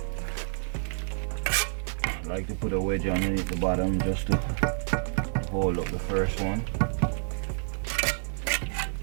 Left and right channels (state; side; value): silent; left; digital silence